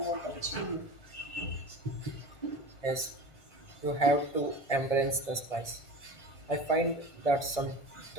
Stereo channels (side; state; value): right; late; 1.5 ms